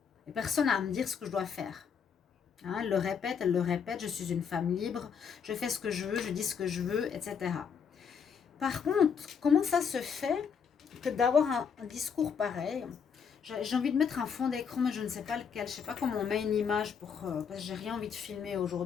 et personne n'a à me dire ce que je dois faire. Elle le répète, je suis une femme libre, je fais ce que je veux, je dis ce que je veux, etc. Par contre, comment ça se fait que d'avoir un discours pareil? J'ai envie de mettre un fond d'écran, mais je ne sais pas lequel. Je ne sais pas comment on met une image parce que j'ai rien envie de filmer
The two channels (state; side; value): quieter; right; 6.8 dB